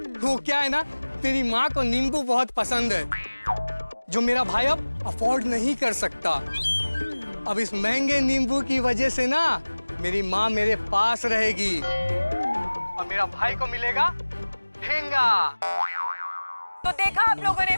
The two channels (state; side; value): inverted; both; correlation -1.00